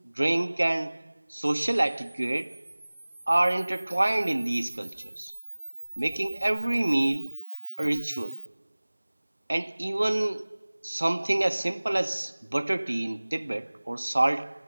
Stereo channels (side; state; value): both; inverted; correlation -1.00